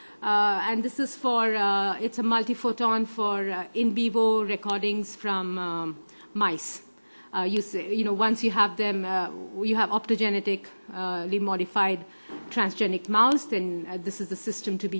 And this is it's a multiphoton for in vivo recordings from mice. Once you have them, you have optogenetically modified transgenic mouse, then this is the system to be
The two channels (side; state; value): both; inverted; correlation -1.00